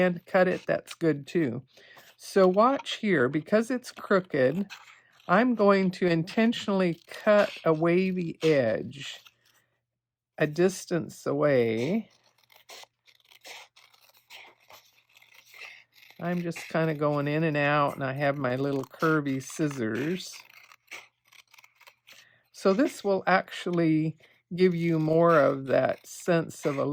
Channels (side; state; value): both; identical; correlation 1.00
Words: cut it, that's good too. So watch here, because it's crooked, I'm going to intentionally cut a wavy edge a distance away. I'm just kind of going in and out, and I have my little curvy scissors. So this will actually give you more of that sense of a